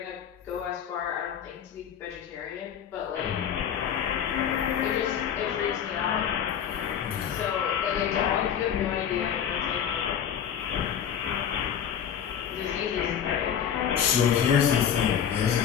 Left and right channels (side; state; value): right; quieter; 8.6 dB